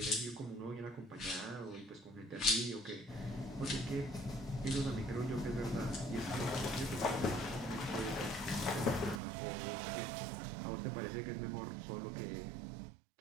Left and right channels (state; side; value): drops out; left; at 9.2 s